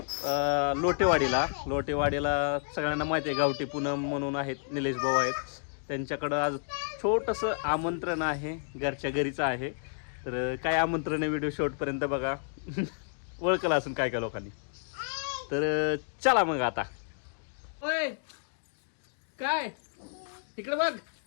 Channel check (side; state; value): right; silent; digital silence